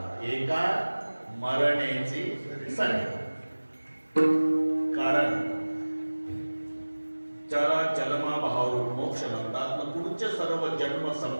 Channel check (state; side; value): inverted; both; correlation -1.00